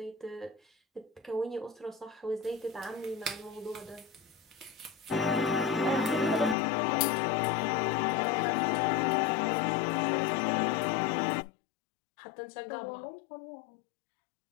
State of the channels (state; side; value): drops out; right; at 6.6 s